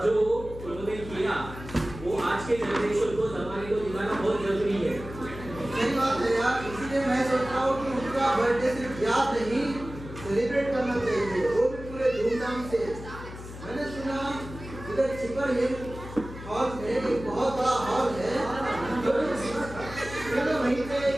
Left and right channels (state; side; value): noise; left; hum, 12 dB below the sound